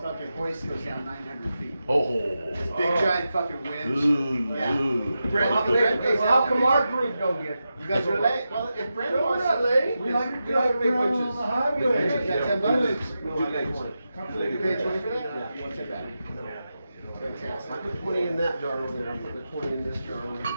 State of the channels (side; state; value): both; inverted; correlation -0.90